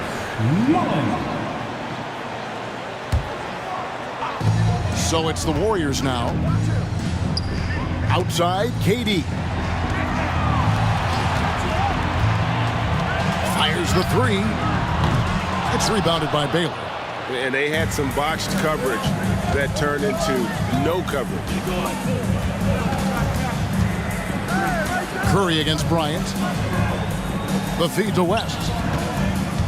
Mullins. So it's the Warriors now. Outside, KD. Fires the three. It's rebounded by Baylor. And they had some botched coverage that turned into no coverage. Curry against Bryant. The feed to West.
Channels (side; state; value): both; identical; correlation 1.00